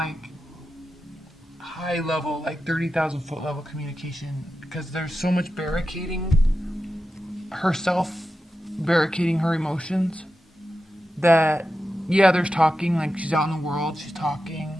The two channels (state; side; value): normal; both; correlation 0.90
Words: high level, like 30,000 foot level communication, because there's so much barricading herself, barricading her emotions, that yeah, there's talking, like she's out in the world, she's